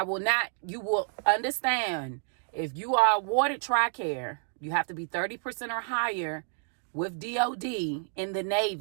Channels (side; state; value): left; silent; 58 dB below the other